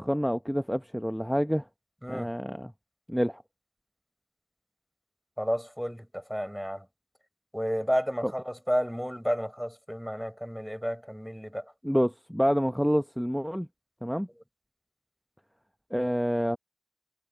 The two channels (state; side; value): identical; both; correlation 1.00